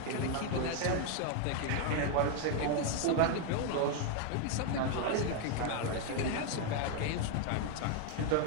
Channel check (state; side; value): different; both; correlation 0.01